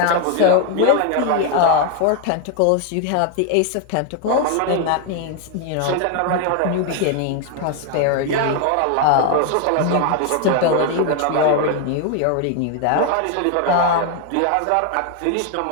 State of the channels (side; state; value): both; different; correlation 0.01